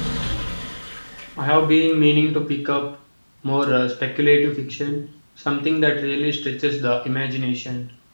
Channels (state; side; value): inverted; both; correlation -1.00